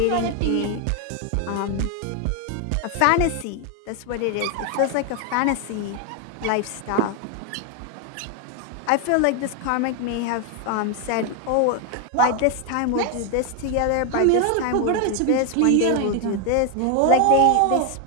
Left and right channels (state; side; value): different; both; correlation 0.01